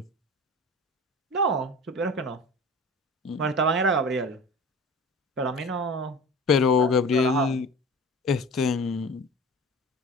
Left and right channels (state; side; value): normal; both; correlation 0.37